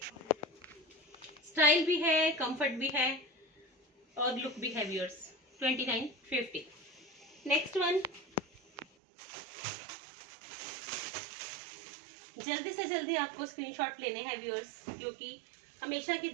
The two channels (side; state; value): left; drops out; at 8.8 s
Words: स्टाइल भी है, कंफर्ट भी है और लुक भी है व्यूअर्स। 2950। नेक्स्ट वन, जल्दी से जल्दी आपको स्क्रीनशॉट लेने हैं व्यूअर्स, क्योंकि हमेशा की